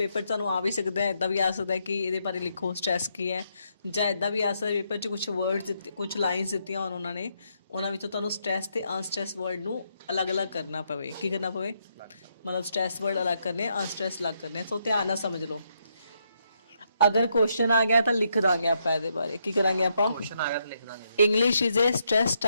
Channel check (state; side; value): inverted; both; correlation -0.78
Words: ਤੁਹਾਨੂੰ ਆ ਵੀ ਸਕਦਾ ਹੈ, ਇਦਾਂ ਵੀ ਆ ਸਕਦਾ ਹੈ ਕਿ ਇਹਦੇ ਬਾਰੇ ਲਿਖੋ ਸਟ੍ਰੈਸ ਕੀ ਹੈ, ਜਾਂ ਇਦਾਂ ਵੀ ਆ ਸਕਦਾ ਪੇਪਰ 'ਚ ਕੁਝ ਵਰਡਸ ਦਿੱਤੇ, ਕੁਝ ਲਾਈਨਸ ਦਿੱਤੀਆਂ ਹੋਣ ਉਹਨਾਂ ਨੇ, ਉਹਨਾਂ ਵਿੱਚੋਂ ਤੁਹਾਨੂੰ ਸਟ੍ਰੈਸ ਤੇ ਅਨਸਟ੍ਰੈਸ ਵਰਡ ਨੂੰ ਅਲੱਗ-ਅਲੱਗ ਕਰਨਾ ਪਵੇ। ਕੀ ਕਰਨਾ ਪਵੇ? ਮਤਲਬ ਸਟ੍ਰੈਸ ਵਰਡ ਅਲੱਗ ਕਰਨੇ, ਅਨਸਟ੍ਰੈਸ ਅਲੱਗ ਕਰਨੇ। ਸੋ ਧਿਆਨ ਨਾਲ ਸਮਝ ਲਓ। अगर क्वेश्चन आ गया तो लिख देंगे आप ਇਹਦੇ ਬਾਰੇ। ਕੀ ਕਰਾਂਗੇ ਆਪਾਂ? क्वेश्चन आ गया तो लिख देंगे। English is a stress